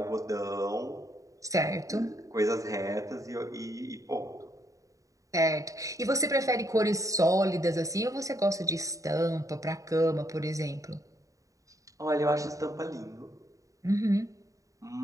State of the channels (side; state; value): left; late; 0.16 ms